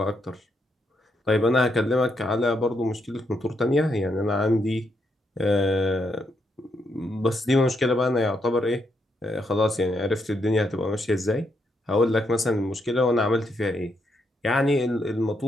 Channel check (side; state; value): both; normal; correlation 0.78